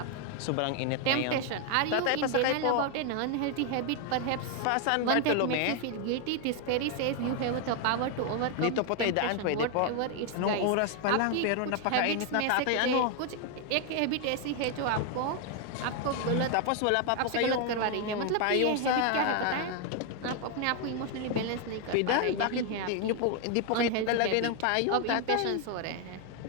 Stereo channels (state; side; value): different; both; correlation 0.01